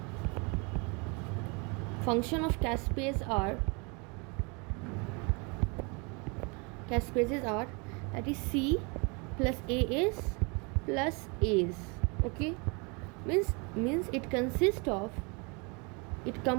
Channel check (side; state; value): left; quieter; 31.2 dB